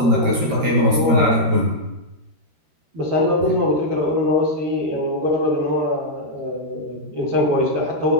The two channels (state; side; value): late; left; 13 ms